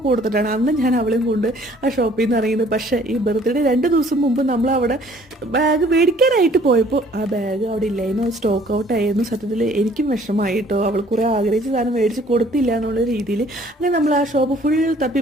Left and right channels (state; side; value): normal; both; correlation 0.57